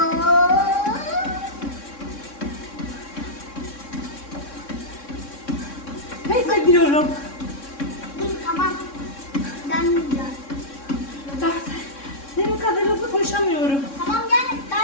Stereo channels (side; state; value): right; late; 3.6 ms